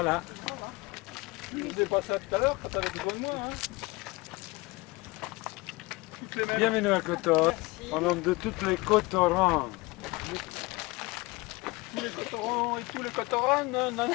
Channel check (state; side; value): quieter; right; 23.3 dB